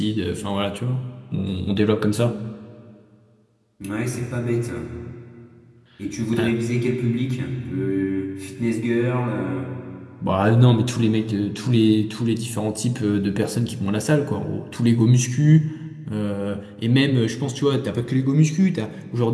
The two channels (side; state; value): both; identical; correlation 1.00